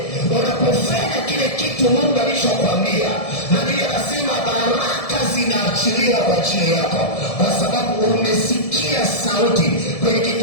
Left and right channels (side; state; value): right; late; 1.7 ms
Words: Unapofanya kile kitu Mungu alishokuambia, na ndiye anasema baraka zinaachiliwa kwa ajili yako, kwa sababu umesikia sauti. Kwenye